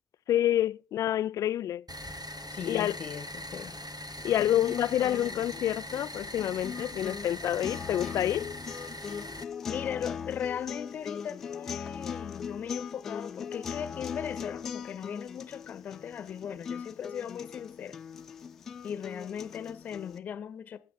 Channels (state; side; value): quieter; right; 9.5 dB